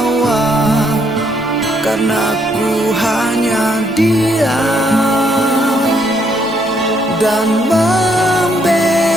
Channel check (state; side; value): normal; both; correlation 0.71